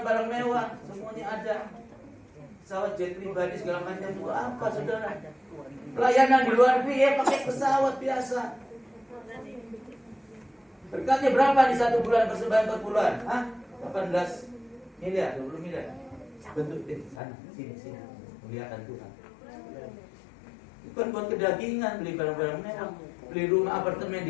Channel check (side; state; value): right; drops out; at 17.2 s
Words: mewah, semuanya ada. Pesawat jet pribadi segala macam itu apa, saudara? Pelayanan di luar negeri ya pakai pesawat biasa. Berkatnya berapa di 1 bulan persembahan per bulan? 18 miliar, 20 miliar. Bentuk sana, sini, muliakan Tuhan. Bukan buat kedagingan, beli barang-barang mewah, beli rumah apartemen